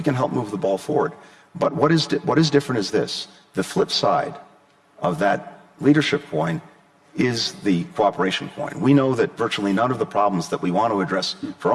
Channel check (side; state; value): both; identical; correlation 1.00